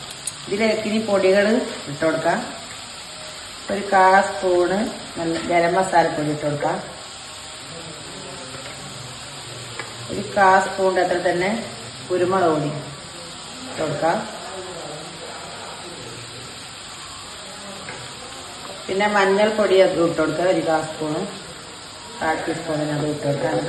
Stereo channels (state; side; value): identical; both; correlation 1.00